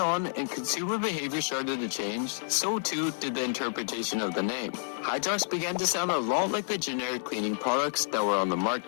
and consumer behavior started to change, so too did the interpretation of the name. Hydrox began to sound a lot like the generic cleaning products that were on the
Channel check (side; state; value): right; silent; digital silence